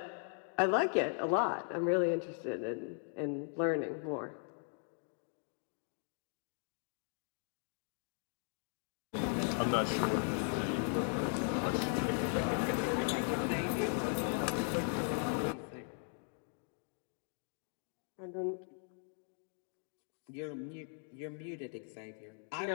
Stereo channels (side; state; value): right; silent; 52 dB below the other